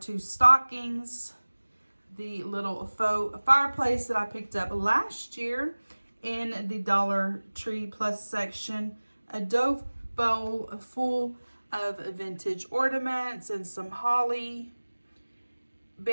stockings. The little faux fireplace that I picked up last year in the Dollar Tree Plus section. A dough bowl full of vintage ornaments and some holly,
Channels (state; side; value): inverted; both; correlation -1.00